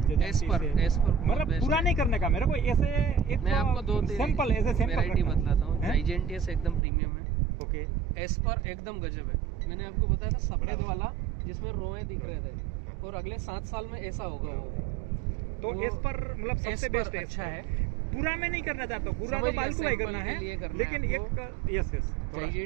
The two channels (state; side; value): drops out; left; at 6.8 s